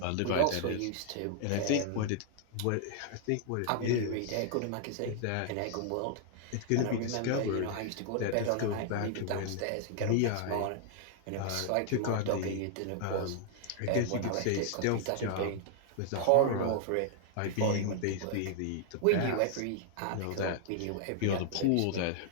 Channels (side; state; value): both; different; correlation 0.00